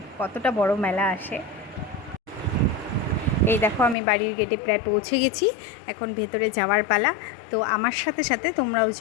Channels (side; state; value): right; drops out; at 4.0 s